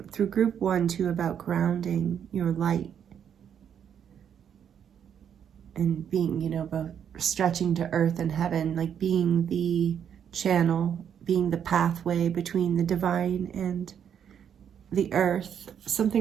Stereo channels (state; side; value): quieter; left; 8.5 dB